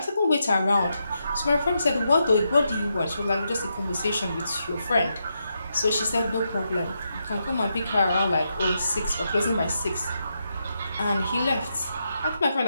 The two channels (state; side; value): inverted; both; correlation -0.83